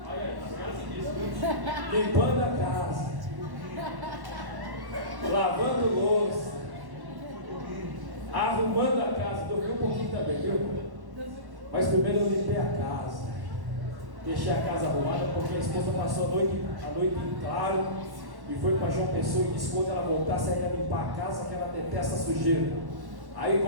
Olha aí, tá limpando a casa. Lavando louça. Arrumando a casa. Dormi um pouquinho também, viu? Mas primeiro eu limpei a casa. Deixei a casa arrumada porque a esposa passou a noite em claro e foi para João Pessoa e disse que quando ela voltasse ela ia limpar a casa, que ela detesta sujeira. Aí,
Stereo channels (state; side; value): late; left; 1.1 ms